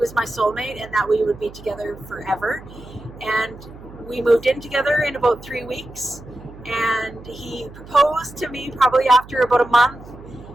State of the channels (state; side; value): noise; right; hum, 18 dB below the sound